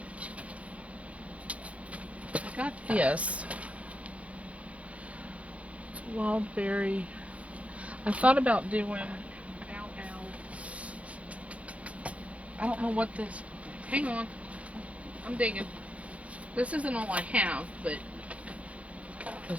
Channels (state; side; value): late; left; 0.064 ms